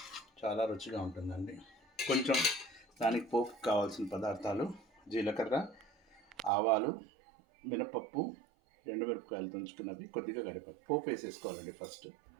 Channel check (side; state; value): left; drops out; at 6.5 s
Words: చాలా రుచిగా ఉంటుందండి. కొంచెం దానికి పోపుకు కావాల్సిన పదార్థాలు: జీలకర్ర, ఆవాలు, మినపప్పు, ఎండుమిరపకాయలు తుంచుకున్నవి, కొద్దిగా కరివేపాకు. పోపు వేసేసుకోవాలండి. ఫస్ట్